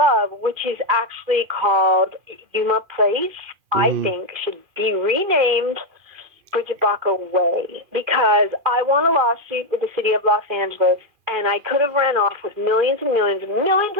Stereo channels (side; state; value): left; late; 2.4 ms